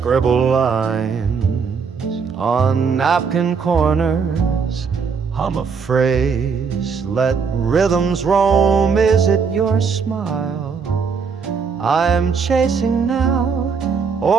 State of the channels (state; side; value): quieter; left; 5.7 dB